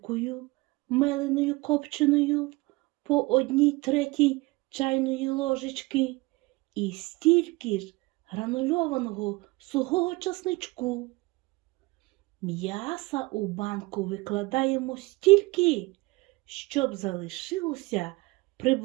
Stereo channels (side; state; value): left; quieter; 23.1 dB